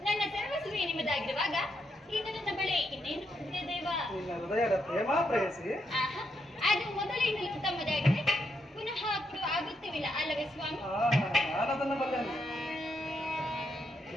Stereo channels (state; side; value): normal; both; correlation 0.79